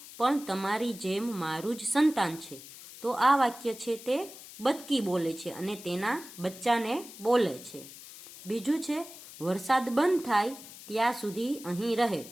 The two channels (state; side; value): noise; left; hiss, 16 dB below the sound